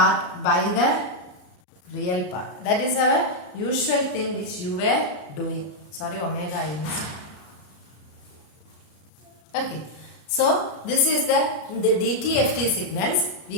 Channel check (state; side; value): late; right; 34 ms